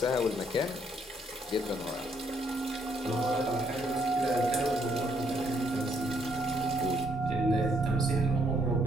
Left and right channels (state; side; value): normal; both; correlation 0.71